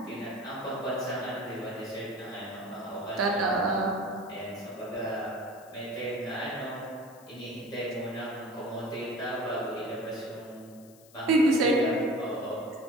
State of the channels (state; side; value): noise; left; hiss, 24 dB below the sound